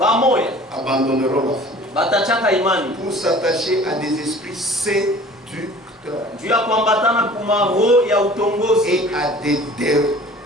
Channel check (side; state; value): both; normal; correlation 0.46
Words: abandonneront la foi batachaka imani pour s'attacher à des esprits séducteurs juu ya kuambatana kumaroho ya utongozi et